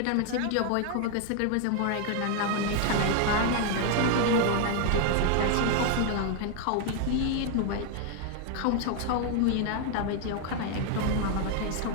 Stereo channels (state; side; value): different; both; correlation 0.00